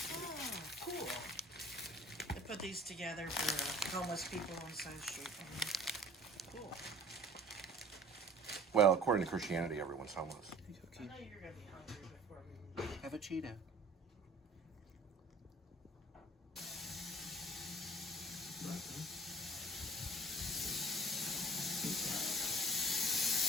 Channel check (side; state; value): both; normal; correlation 0.48